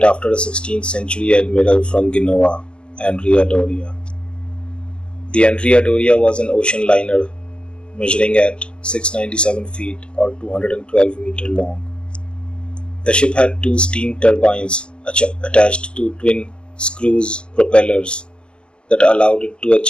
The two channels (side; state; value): right; late; 0.050 ms